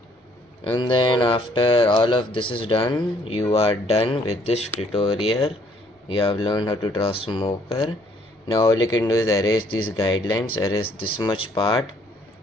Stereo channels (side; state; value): both; normal; correlation 0.64